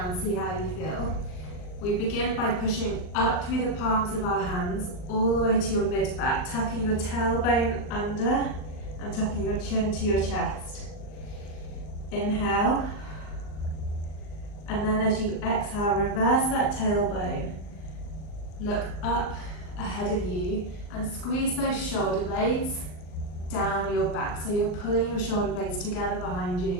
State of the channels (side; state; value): right; late; 39 ms